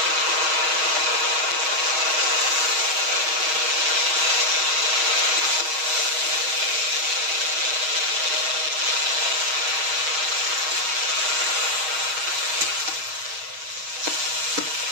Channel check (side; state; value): left; late; 6.4 ms